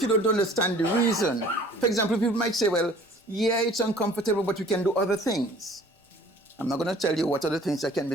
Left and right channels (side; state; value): both; normal; correlation 0.51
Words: you don't understand the reason, for example, people might say, well, yeah, it's uncomfortable, but we can do other things. I'm not going to tell you what other things that can